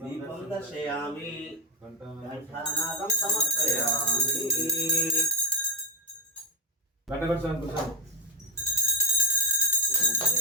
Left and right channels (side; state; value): both; normal; correlation 0.09